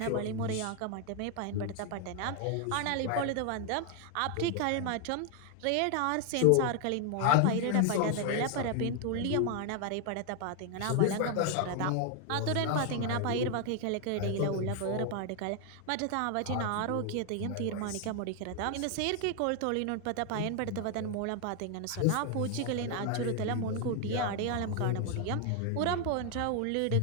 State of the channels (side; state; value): both; different; correlation 0.00